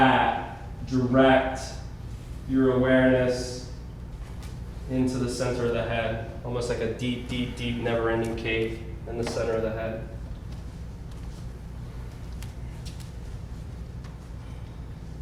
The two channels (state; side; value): identical; both; correlation 1.00